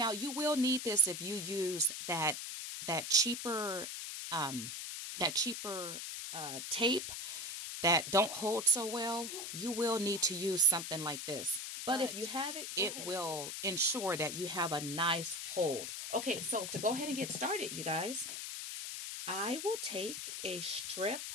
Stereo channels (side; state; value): left; noise; hiss, 6 dB below the sound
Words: you will need this if you use that cheaper tape that don't hold so well. You will need to use something like this. But if you have it, it will ensure that you have a nice hold. Okay, so to go ahead and get started, you guys, I will take a strip